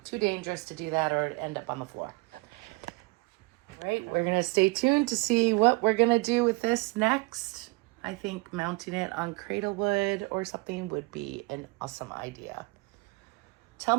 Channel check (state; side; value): quieter; left; 25.7 dB